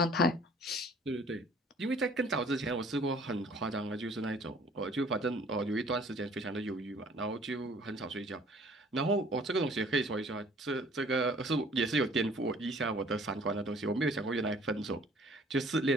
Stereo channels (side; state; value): both; normal; correlation 0.55